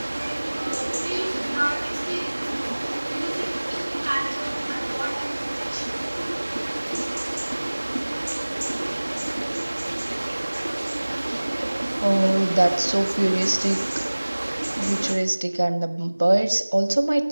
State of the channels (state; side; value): inverted; both; correlation -1.00